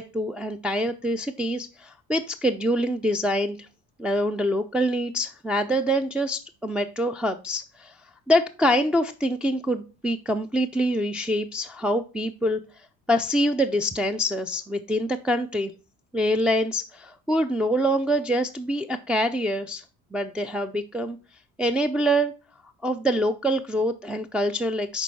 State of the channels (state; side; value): normal; both; correlation 0.69